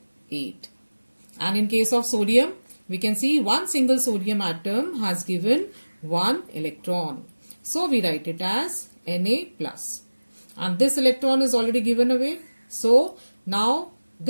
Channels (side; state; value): both; inverted; correlation -1.00